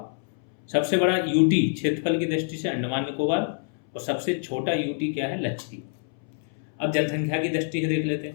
सबसे बड़ा यूटी क्षेत्रफल की दृष्टि से अंडमान निकोबार, और सबसे छोटा यूटी क्या है लक्षद्वीप। अब जनसंख्या की दृष्टि से देख लेते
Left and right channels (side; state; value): right; silent; 61 dB below the other